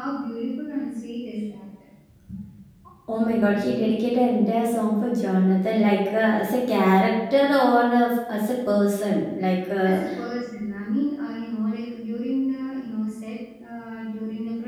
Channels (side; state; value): both; identical; correlation 1.00